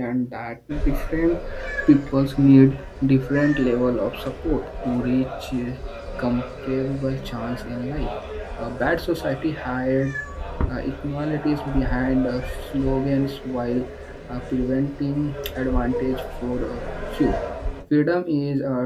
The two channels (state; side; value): identical; both; correlation 1.00